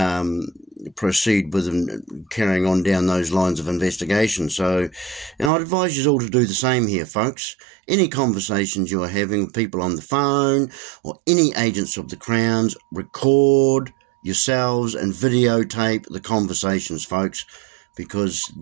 proceed with carrying on down those lines of investigation. So, and I'd advise you all to do the same here, folks. Any conversations you are having with people on the phone or any agents of the Crown's, record yourselves and videotape the conversations, folks, because,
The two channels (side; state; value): left; drops out; at 5.5 s